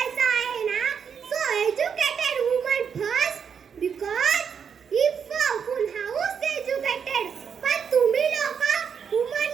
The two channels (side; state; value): left; quieter; 7.0 dB